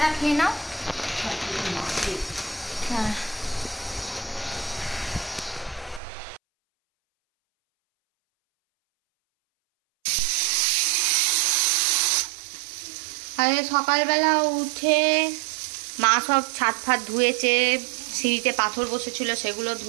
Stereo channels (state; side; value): drops out; left; at 6.0 s